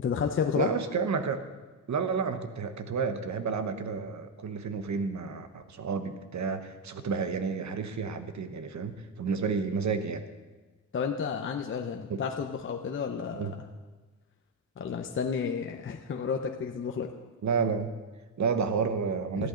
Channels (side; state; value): both; normal; correlation 0.03